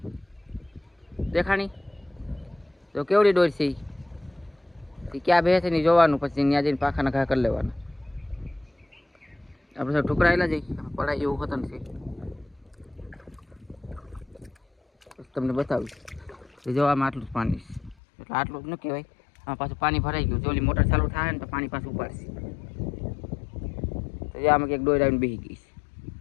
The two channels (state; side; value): drops out; right; at 17.9 s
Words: દેખાણી। તો કેવડી ડોર છે એ ક્યાં બે છે ને જોવાનું, પછી ત્યાં જઈને પાખાના ઘા કરી લેવાના। આપણે ઠુકરાયેલા જઈ પડાય એવું હોતું નથી, તમને બતાવ્યું। જો આમાં આટલું જ પાણી છે, એટલે આટલું જ ન કહેવાય, આમાં પાછું પાણી ભરાઈ ગયું। જો ઓલી મોટર ચાલુ થાય ને તો પાણી પાછું ઉપાડશે। તો આમાં કંઈક ડોર આવીને બેસી ગઈ છે।